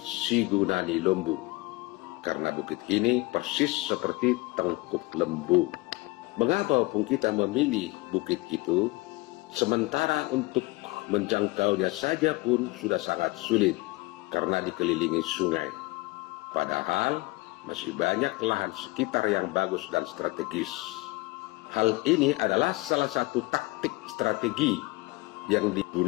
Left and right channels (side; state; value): right; quieter; 23.0 dB